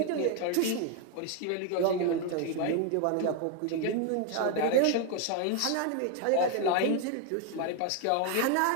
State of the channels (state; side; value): different; both; correlation 0.01